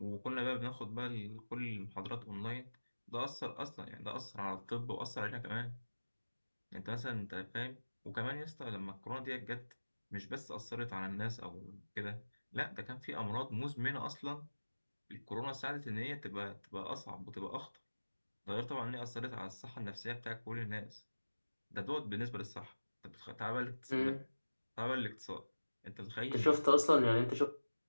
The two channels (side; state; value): both; inverted; correlation -1.00